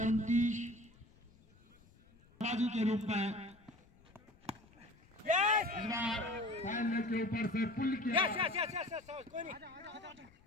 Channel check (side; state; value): left; noise; rumble, 27 dB below the sound